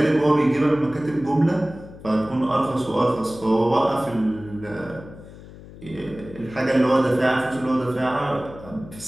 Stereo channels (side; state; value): left; noise; hum, 17 dB below the sound